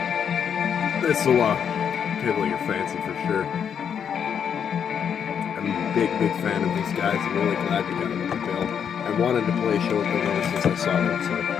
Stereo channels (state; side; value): quieter; right; 7.8 dB